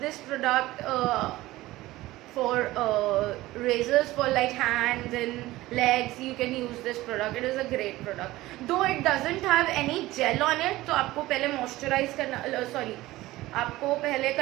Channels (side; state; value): left; quieter; 17.6 dB